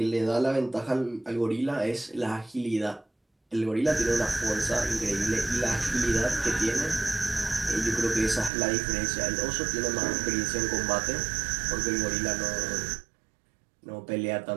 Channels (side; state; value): left; drops out; at 8.5 s